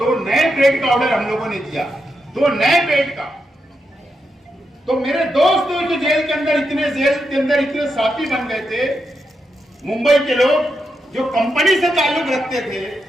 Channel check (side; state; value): both; normal; correlation 0.84